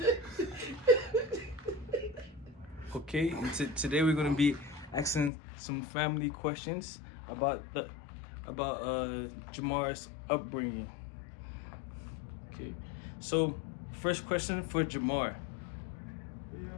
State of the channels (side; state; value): right; drops out; at 5.3 s